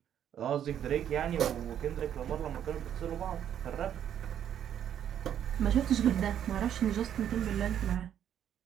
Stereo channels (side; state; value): left; quieter; 9.8 dB